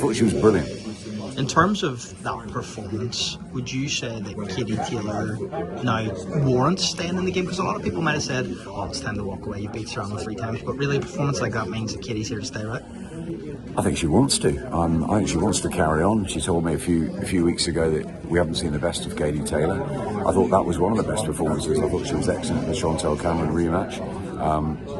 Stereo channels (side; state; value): both; identical; correlation 1.00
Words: she was brilliant. In terms of that performance, would you say that Katie Taylor now warrants staying in the game? Because a lot of people might have said, oh, it's time to walk away, you beat Serrano 3 times, but really a performance like that means that Katie's here to stay, right? I think she wants to. I think she wants to carry on. She told me a few weeks ago that we haven't seen the best of Katie Taylor. I thought that was one of the best performances. I thought she was excellent in the Chantel Cameron rematch.